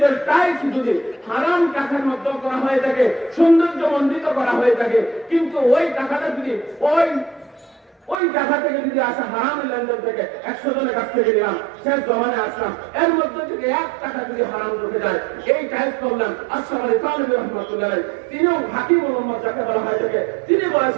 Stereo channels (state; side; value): drops out; left; at 8.2 s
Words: টাইলস যদি হারাম টাকার মধ্যে করা হয়ে থাকে, সৌন্দর্য মণ্ডিত করা হয়ে থাকে, কিন্তু ওই টাকাটা যদি ওই টাকা থেকে যদি আসা হারাম লেনদেন থেকে 100 জনের কাছ থেকে নিলাম, শেষ জমানে আসলাম, এর মধ্যে থেকে 1 টাকা যদি হারাম ঢুকে যায়, এই টাইপ করলাম আশরাফ খান রহমাতুল্লাহ, তিনিও হাকিম মোহাম্মদ যাকে বলা হয় থাকে, তিনি